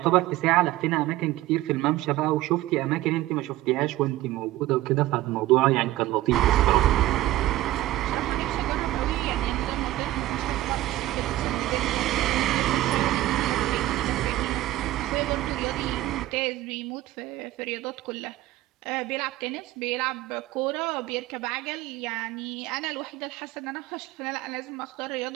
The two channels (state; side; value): quieter; left; 15.7 dB